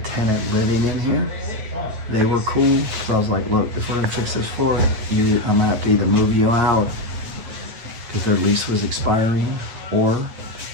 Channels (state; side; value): late; left; 9.3 ms